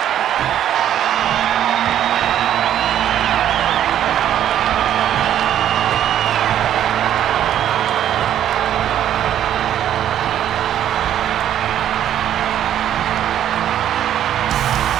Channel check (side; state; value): left; quieter; 10.8 dB